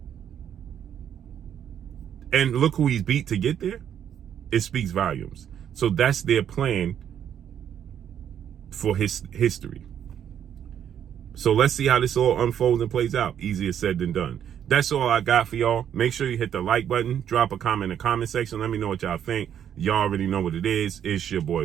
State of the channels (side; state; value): left; quieter; 9.3 dB